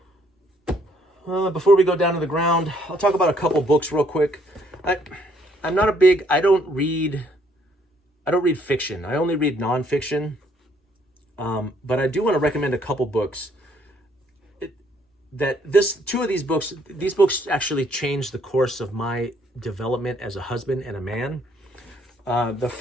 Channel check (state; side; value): normal; both; correlation 0.66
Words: Before we go down to the ground, I'll talk about a couple books real quick. I'm not a big, I don't read fiction. I only read nonfiction. But I do want to recommend a couple books. Two of these books actually changed the course of my development as a husband and a man. The